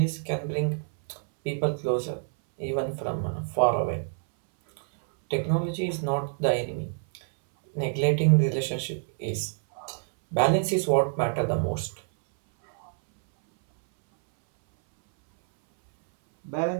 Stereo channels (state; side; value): silent; left; 60 dB below the other